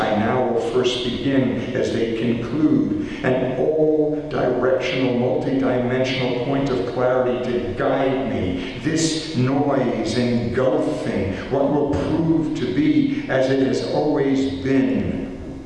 now will first begin as they conclude, an all-directional, multi-dimensional point of clarity to guide me, this noise engulfing what will prove to be as it has always been.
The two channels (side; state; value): both; identical; correlation 1.00